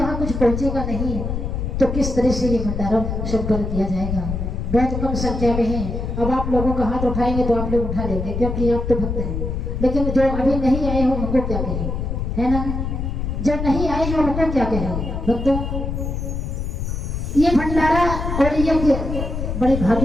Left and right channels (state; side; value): noise; left; rumble, 3 dB below the sound